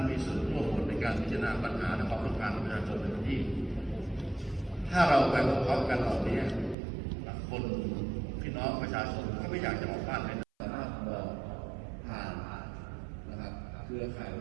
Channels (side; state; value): left; drops out; at 6.8 s